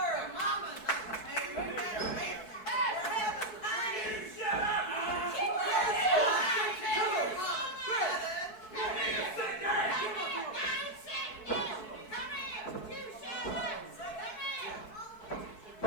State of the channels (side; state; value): right; late; 4.6 ms